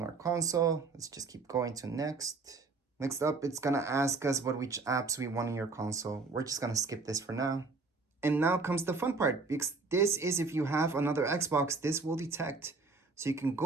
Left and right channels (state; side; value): quieter; left; 4.0 dB